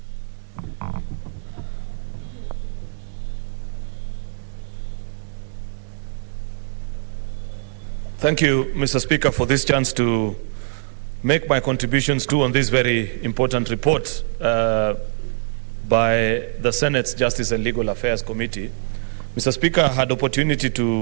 Thank you, Mr. Speaker, for this chance to make my contributions too on this very important report by the Senate's Justice and Legal Affairs Committee. Mr. Speaker, I had opportunity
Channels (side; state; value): left; silent; 61 dB below the other